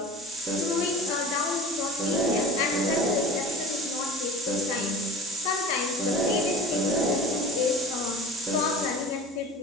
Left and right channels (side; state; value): both; normal; correlation 0.38